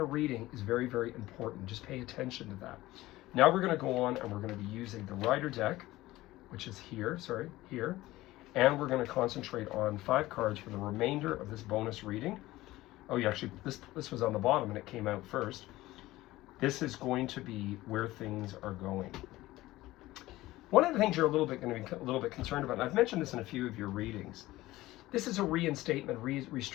reading is very, very important. Just pay attention to that. Now we're going to go on and we're going to be using the Rider deck, which is here, and we're going to concentrate on 5 cards for the remainder of this bonus reading. Oh, yeah, actually, this was on the bottom and it came out first. This is going to be where things are going. One of the things you're going to be a little bit concerned about, and I've mentioned this in a few of your readings, this is a reinstatement,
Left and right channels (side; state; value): right; quieter; 17.5 dB